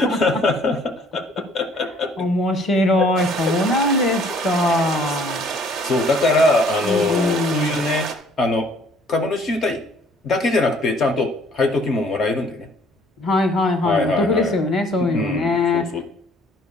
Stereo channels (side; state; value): both; normal; correlation 0.58